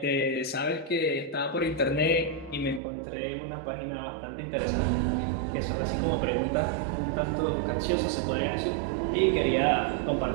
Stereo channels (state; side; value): drops out; left; at 2.8 s